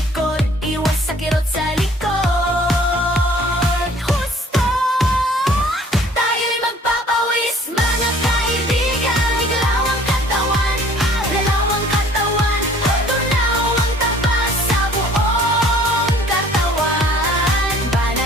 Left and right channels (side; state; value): both; normal; correlation 0.54